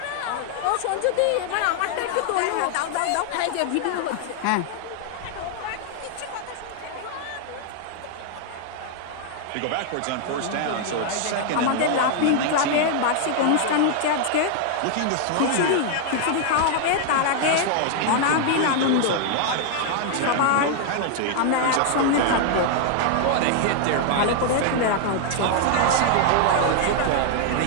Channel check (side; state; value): both; different; correlation 0.00